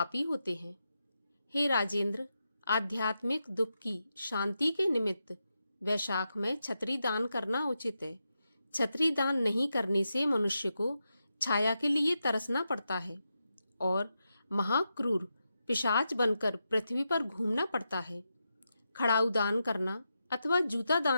होते हैं। हे राजेंद्र, आध्यात्मिक दुख की शांति के निमित्त वैशाख में छतरी दान करना उचित है। छतरी दान नहीं करने से मनुष्य को छाया के लिए तरसना पड़ता है और महाक्रूर पिशाच बनकर पृथ्वी पर घूमना पड़ता है। खड़ाऊ दान करना अथवा जूता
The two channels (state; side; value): inverted; both; correlation -0.87